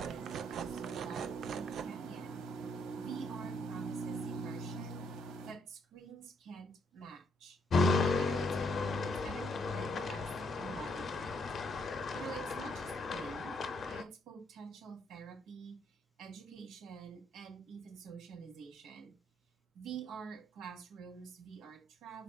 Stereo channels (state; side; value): normal; both; correlation 0.72